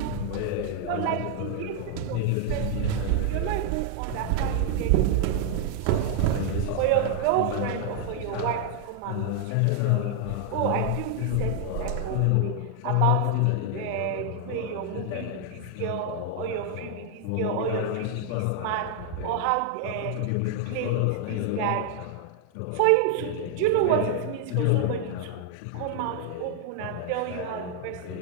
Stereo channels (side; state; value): both; different; correlation 0.00